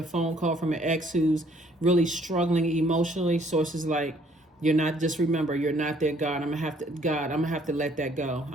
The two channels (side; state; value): both; normal; correlation 0.62